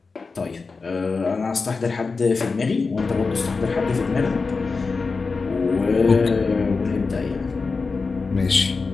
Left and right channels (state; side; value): quieter; right; 4.4 dB